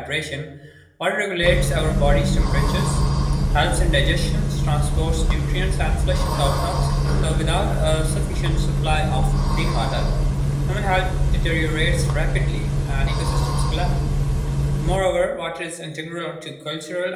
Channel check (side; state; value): both; identical; correlation 1.00